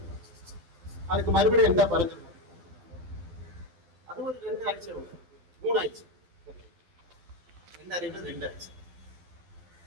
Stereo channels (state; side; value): late; left; 12 ms